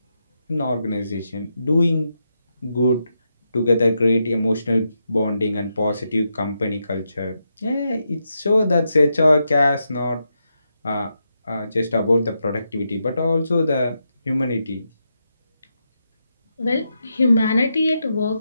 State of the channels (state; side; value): inverted; both; correlation -0.84